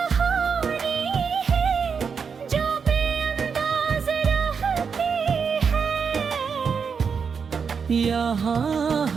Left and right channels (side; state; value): left; quieter; 6.1 dB